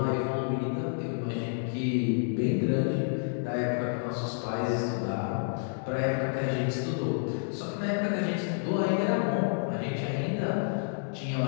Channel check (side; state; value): right; silent; digital silence